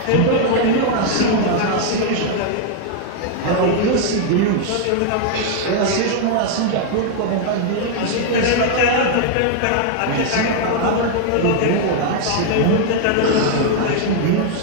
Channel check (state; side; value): different; both; correlation 0.00